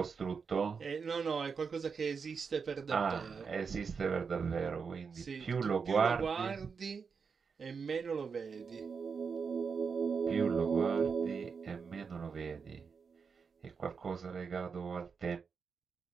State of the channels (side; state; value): left; quieter; 5.6 dB